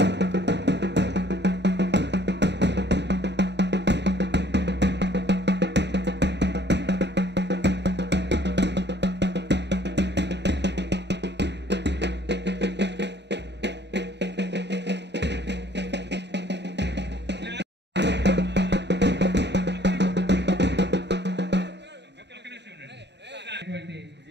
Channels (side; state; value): left; late; 0.50 ms